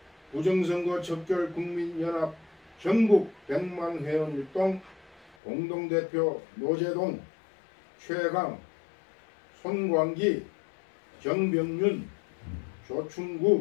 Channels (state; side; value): drops out; right; at 5.4 s